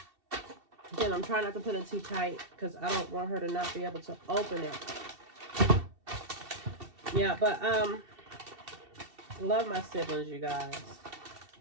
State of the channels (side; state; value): left; late; 2.7 ms